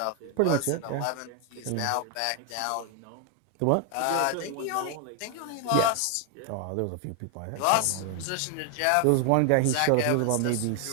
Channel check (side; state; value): both; different; correlation 0.00